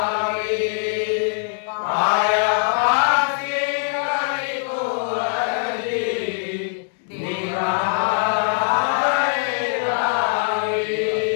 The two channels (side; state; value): right; silent; 64 dB below the other